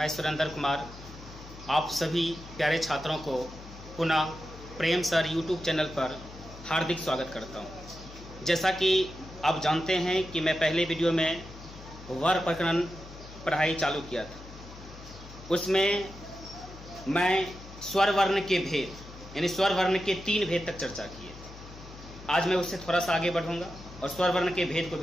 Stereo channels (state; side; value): noise; left; hum, 16 dB below the sound